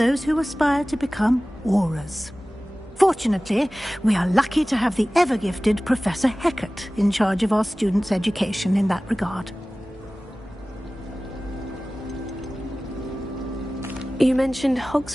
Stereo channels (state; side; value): normal; both; correlation 0.97